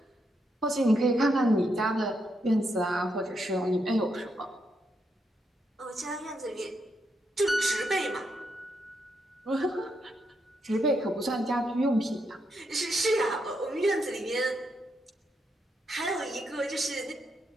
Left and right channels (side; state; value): both; normal; correlation 0.80